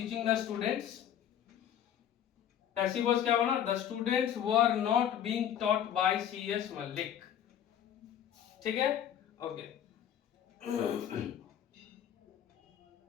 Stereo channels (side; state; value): right; quieter; 9.9 dB